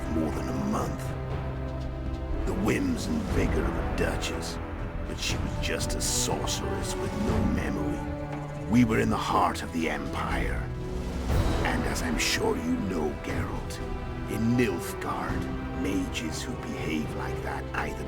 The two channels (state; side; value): identical; both; correlation 1.00